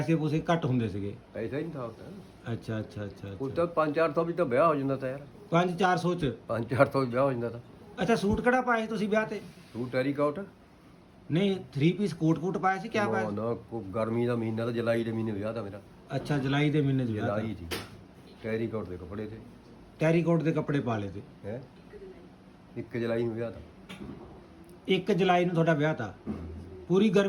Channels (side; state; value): both; identical; correlation 1.00